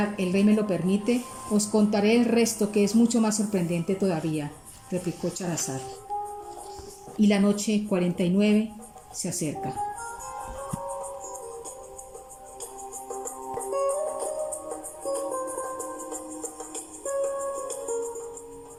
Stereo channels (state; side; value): identical; both; correlation 1.00